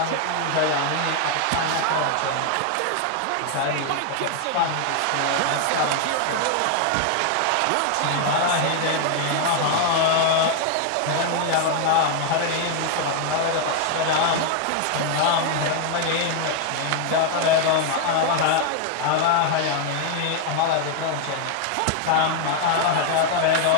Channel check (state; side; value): different; both; correlation 0.00